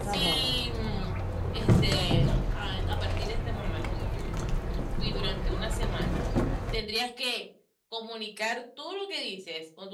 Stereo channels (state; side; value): identical; both; correlation 1.00